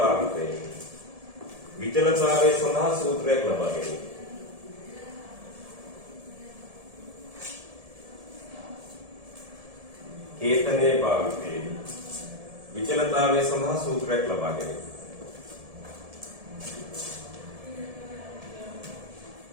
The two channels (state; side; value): late; left; 1.7 ms